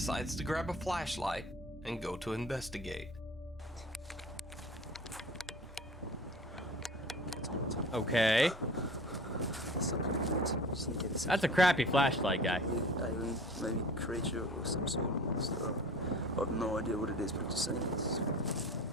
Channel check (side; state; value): both; normal; correlation 0.42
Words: to grab a flashlight and go to investigate. Okay. That's a crappy flashlight, guy. Maybe creature or some sort of monster. I have no idea what it is, but just saying it's